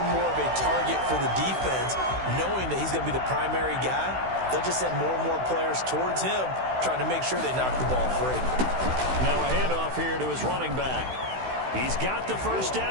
more of a target for the defense, knowing that he's going to be the primary guy. They'll just send more and more players towards him, trying to make sure they knock the ball free. Now a handoff here to his running back. He's got the first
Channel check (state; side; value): late; left; 16 ms